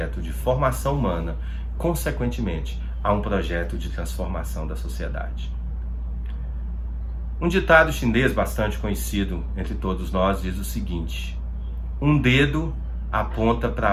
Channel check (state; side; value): identical; both; correlation 1.00